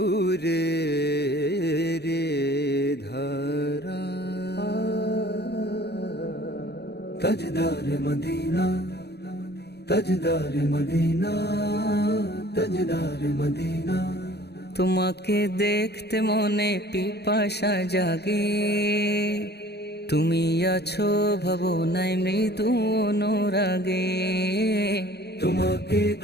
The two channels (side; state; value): right; late; 0.48 ms